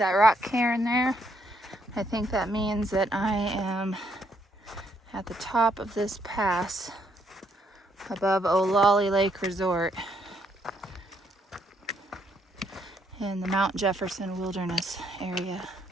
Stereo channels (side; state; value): both; normal; correlation 0.72